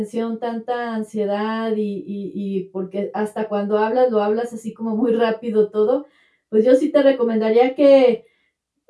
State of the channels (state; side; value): identical; both; correlation 1.00